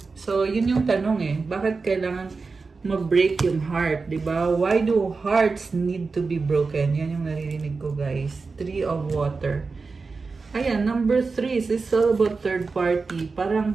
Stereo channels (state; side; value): quieter; left; 4.3 dB